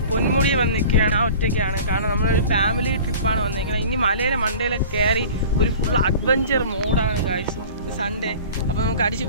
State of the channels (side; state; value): both; inverted; correlation -0.42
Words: പൊന്മുടി വന്നിരിക്കുകയാണ്. ആ ഒറ്റയ്ക്കാണ്. കാരണം നമ്മളൊരു ഫാമിലി ട്രിപ്പാണ് വന്നിരിക്കുന്നത്. ഇനി മലയിലെ മണ്ടയിലൊക്കെ കയറി ഒരു ഫുൾ അഡ്വഞ്ചർ മോഡാണ് ഗൈസ്. സൺഡേ അപ്പോൾ നമുക്ക് അടിച്ച്